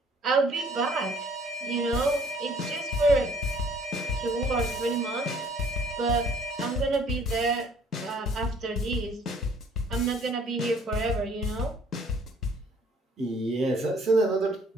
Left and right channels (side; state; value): both; normal; correlation 0.58